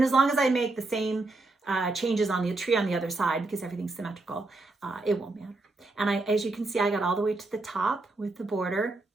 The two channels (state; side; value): quieter; left; 3.2 dB